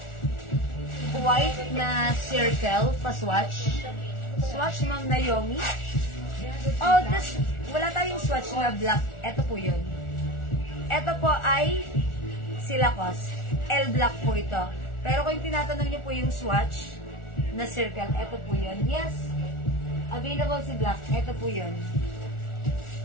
White na circle, pa-swatch. Swatch, Ma'am Naomi. Wala tayong swatch na black. Ito po yun. Ito po ay Silacos. L black po ito. Pero kung tinatanong nyo po yung swatch na circle, ito po yun. Yes. Available si black. Ito po yun.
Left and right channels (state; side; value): late; right; 1.4 ms